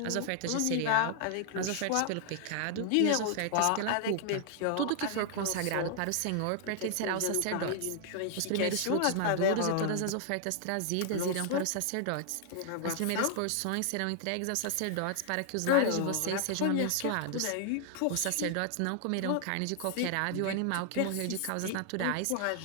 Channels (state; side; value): different; both; correlation 0.00